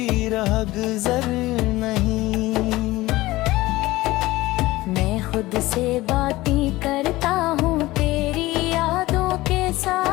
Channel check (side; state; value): right; quieter; 18.5 dB